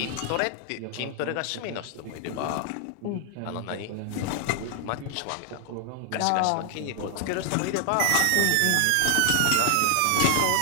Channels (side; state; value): both; different; correlation 0.00